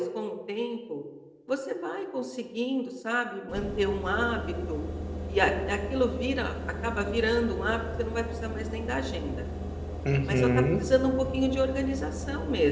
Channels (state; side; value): identical; both; correlation 1.00